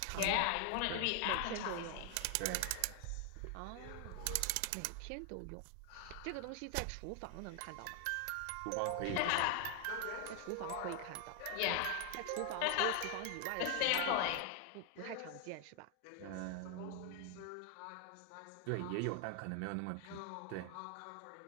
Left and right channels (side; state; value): both; different; correlation 0.00